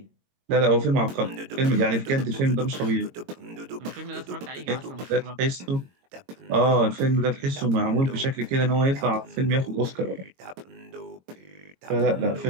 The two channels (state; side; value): late; left; 22 ms